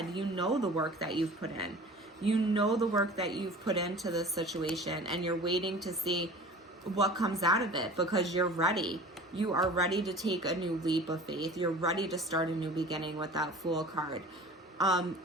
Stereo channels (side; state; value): both; normal; correlation 0.41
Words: You know the work that you've put in. You know the work that you've put into this situation, and you're waiting to see what comes out of it because you're ready. You are ready to take a new leap of faith. You're ready to start a new beginning with that Fool card.